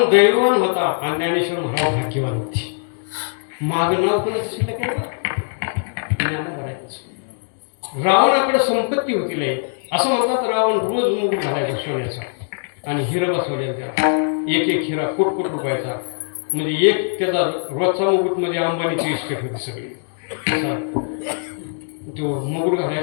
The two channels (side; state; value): right; silent; digital silence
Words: दैववान होता आणि ज्ञानेश्वर महाराज भाग्यवान होते माग नाव कोणाचं शिल्लक आहे ज्ञानोबराचं रावणाकडे संपत्ती होती लय असं म्हणतात रावण रोज मुकुट घालायचा सोन्याचा आणि हिरा बसवल्याचा एक एक हिरा कोट रुपयाचा म्हणजे एक त्याचा रोजचा मुकुट म्हणजे अंबानीची इस्टेट होती सगळी तो मुकुट